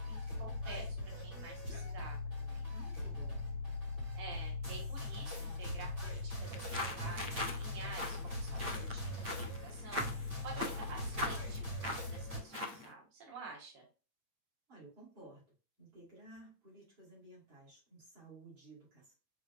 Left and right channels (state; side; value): late; left; 8.7 ms